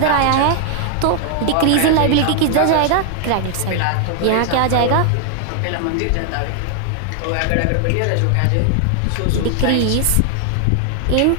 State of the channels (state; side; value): different; both; correlation 0.00